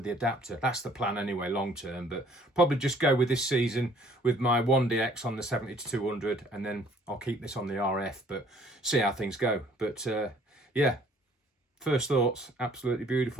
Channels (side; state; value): both; normal; correlation 0.58